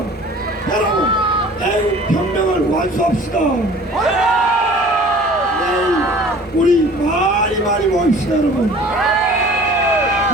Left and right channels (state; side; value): normal; both; correlation 0.47